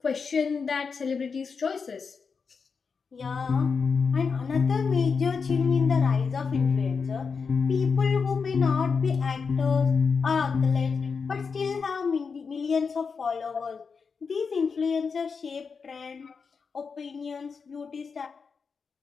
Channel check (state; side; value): quieter; right; 5.4 dB